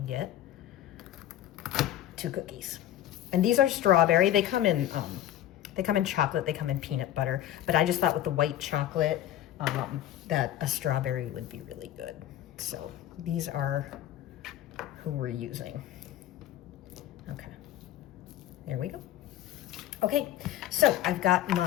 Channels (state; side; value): quieter; right; 12.5 dB